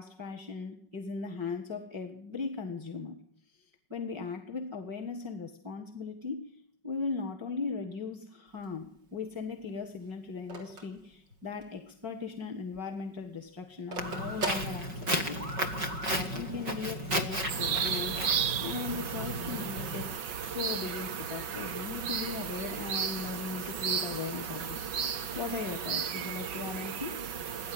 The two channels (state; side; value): late; left; 5.4 ms